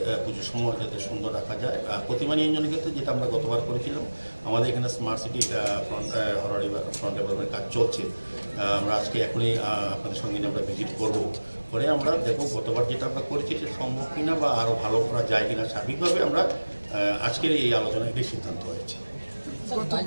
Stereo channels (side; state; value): both; inverted; correlation -1.00